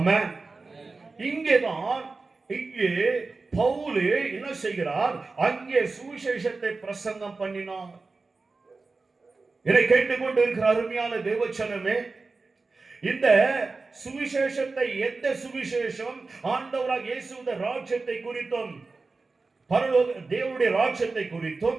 இங்கே பவுல் என்ன செய்கிறார்? அங்கே சுவிசேஷத்தை பிரசங்கம் பண்ணினார். இதை கேட்டுக்கொண்டு இருக்கிற அருமையான தேவச்சனமே, இந்த சுவிசேஷத்தை, எந்த சுவிசேஷம்? ஆண்டவராக இயேசுவின் ராஜ்யத்தை குறித்தும் பரலோக தேவனுடைய ராஜ்யத்தை குறித்தும்,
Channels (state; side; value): quieter; left; 3.9 dB